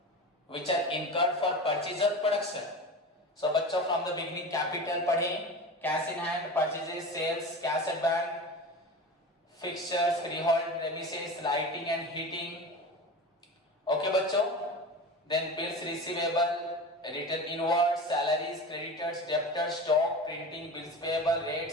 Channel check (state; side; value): normal; both; correlation 0.30